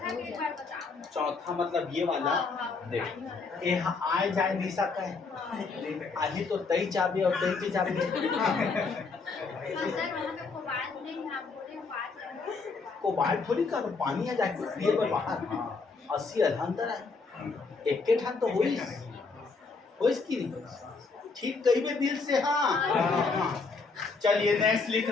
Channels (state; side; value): quieter; right; 4.4 dB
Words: के बार बताओ। चौथा मतलब ये वाला देख, ये आए जाए नहीं सकता है, आज ही तो 23 चाबी और 23 चाबी। सर वहाँ पे कोबाल्ट नहीं, आप बोले बात करें। कोबाल्ट थोड़ी का पानी आ जाए ये बाहर 80 अंदर है, एक ठान तो होइस की नहीं ठीक कही में दिल से। हाँ चलिए नेक्स्ट